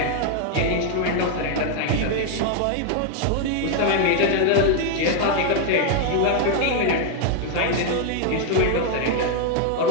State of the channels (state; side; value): different; both; correlation 0.00